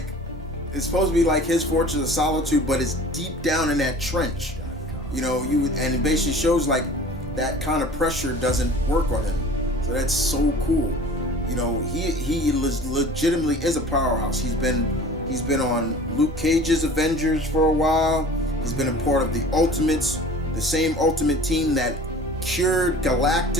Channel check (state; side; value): normal; both; correlation 0.43